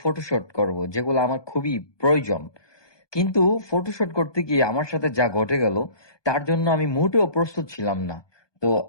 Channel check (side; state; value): right; late; 1.2 ms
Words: ফটোশুট করব, যেগুলো আমার খুবই প্রয়োজন। কিন্তু ফটোশুট করতে গিয়ে আমার সাথে যা ঘটে গেল, তার জন্য আমি মোটেও প্রস্তুত ছিলাম না। তো